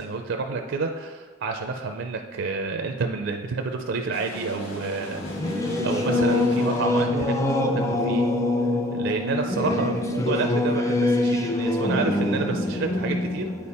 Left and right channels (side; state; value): both; normal; correlation 0.49